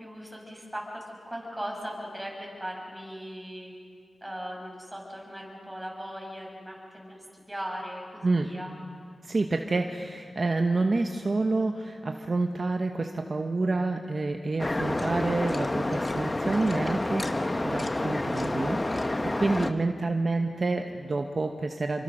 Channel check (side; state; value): both; normal; correlation 0.96